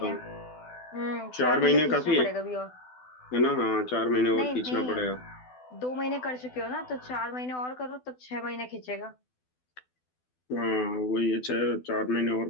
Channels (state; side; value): late; right; 12 ms